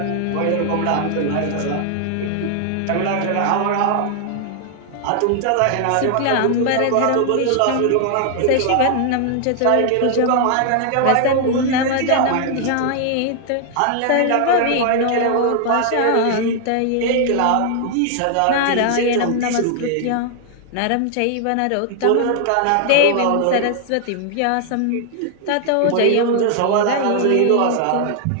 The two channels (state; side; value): different; both; correlation 0.00